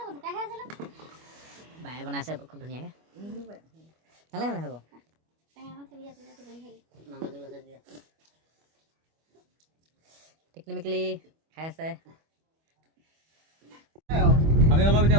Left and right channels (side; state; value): left; late; 25 ms